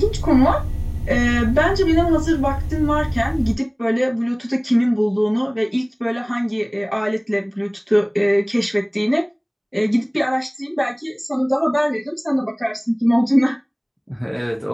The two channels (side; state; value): both; identical; correlation 1.00